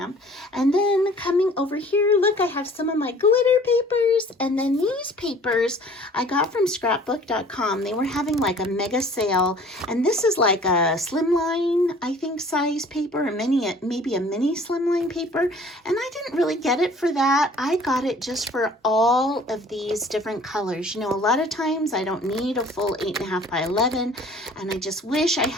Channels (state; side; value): normal; both; correlation 0.51